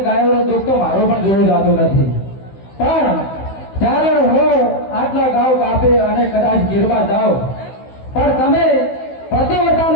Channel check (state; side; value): late; right; 16 ms